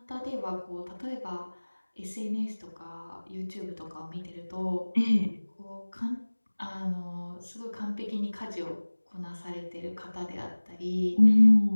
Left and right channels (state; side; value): inverted; both; correlation -1.00